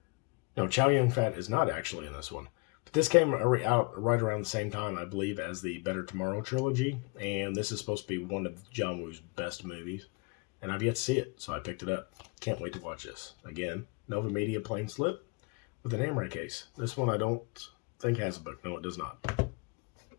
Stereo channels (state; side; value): quieter; right; 29.6 dB